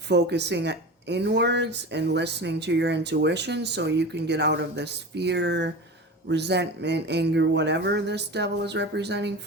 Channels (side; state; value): both; normal; correlation 0.30